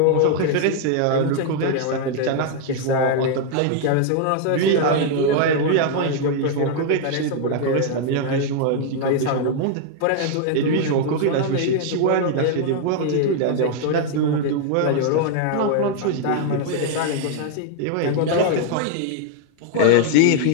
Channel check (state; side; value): different; both; correlation 0.00